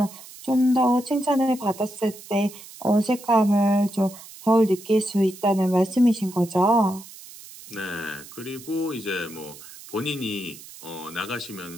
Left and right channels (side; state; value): right; noise; hiss, 17 dB below the sound